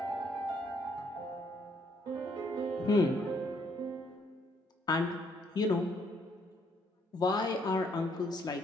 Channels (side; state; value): both; normal; correlation 0.69